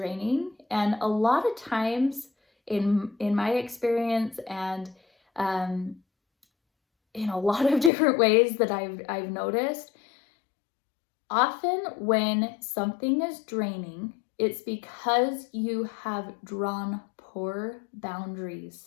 And a lot of times in my experience, and in a lot of different ways that I've noticed, often when something is draining, it's because you have drawn poor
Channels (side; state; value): right; drops out; at 7.9 s